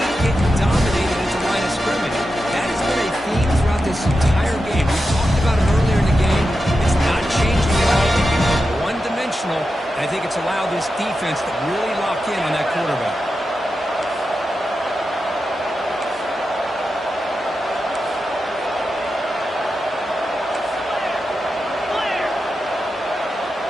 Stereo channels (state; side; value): normal; both; correlation 0.90